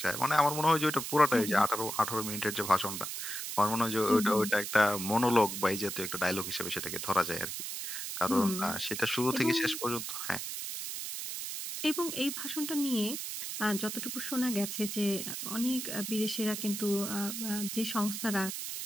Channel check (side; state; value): right; noise; hiss, 5 dB below the sound